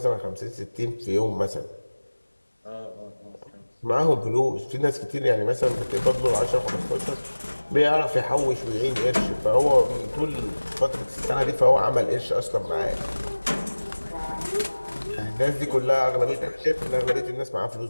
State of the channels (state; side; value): inverted; both; correlation -1.00